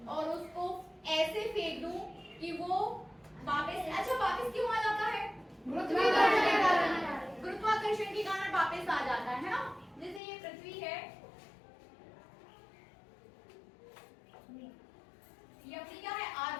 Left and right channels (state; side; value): drops out; right; at 10.2 s